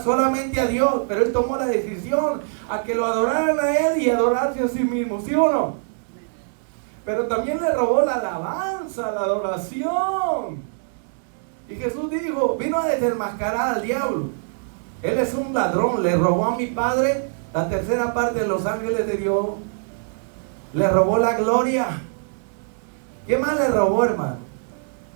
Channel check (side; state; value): left; silent; digital silence